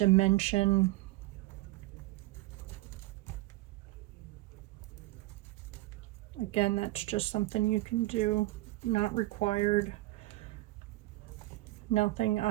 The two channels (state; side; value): quieter; left; 18.9 dB